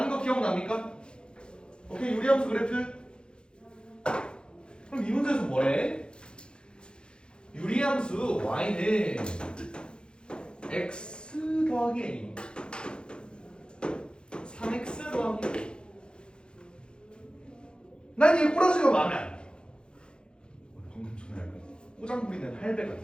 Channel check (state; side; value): late; right; 0.050 ms